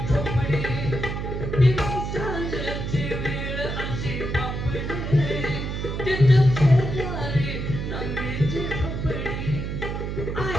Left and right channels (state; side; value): noise; right; hum, 4 dB below the sound